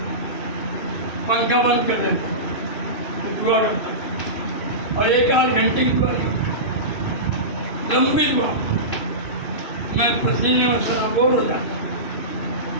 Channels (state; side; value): late; right; 2.6 ms